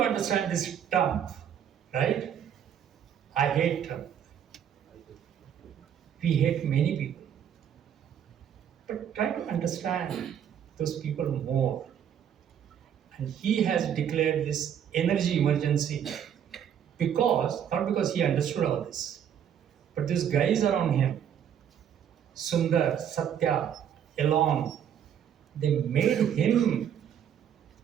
understand this Trump, right? I hate Trump. We hate many people. But try to understand those people more. And he has declared this energy emergency not because he understood all this, but these guys around him, Sundar, Satya, Elon, they made him,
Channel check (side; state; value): left; quieter; 9.0 dB